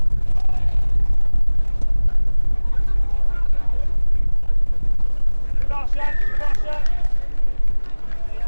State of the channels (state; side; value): inverted; both; correlation -1.00